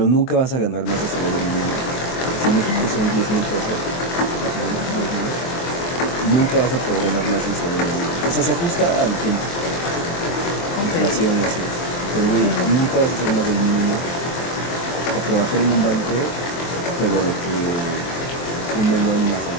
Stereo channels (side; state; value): right; late; 23 ms